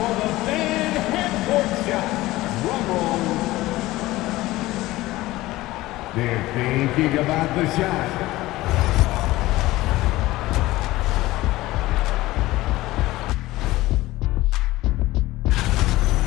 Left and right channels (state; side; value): quieter; right; 17.9 dB